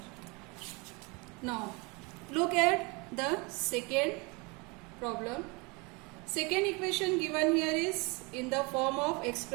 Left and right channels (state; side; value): quieter; left; 28.5 dB